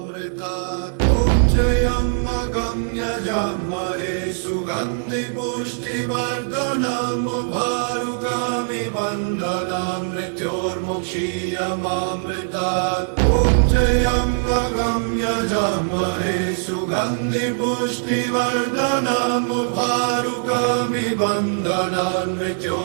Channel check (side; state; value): left; silent; digital silence